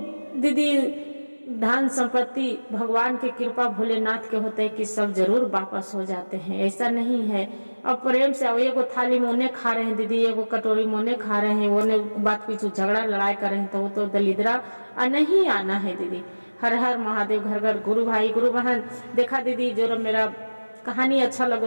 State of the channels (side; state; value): both; inverted; correlation -1.00